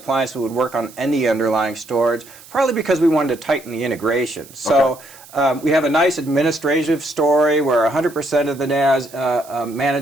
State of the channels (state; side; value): noise; right; hiss, 21 dB below the sound